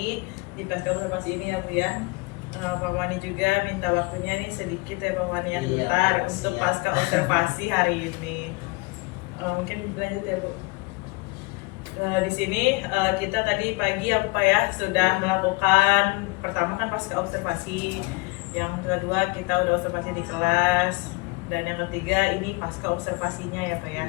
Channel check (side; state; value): right; quieter; 27.5 dB